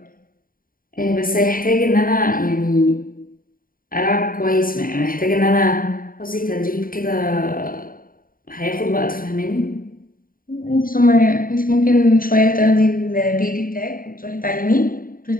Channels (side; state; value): right; late; 0.41 ms